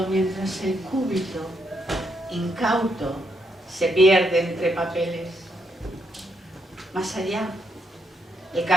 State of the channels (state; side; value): normal; both; correlation 0.77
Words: mientras el cúbito incauto se pierde entre papeles. Más allá, el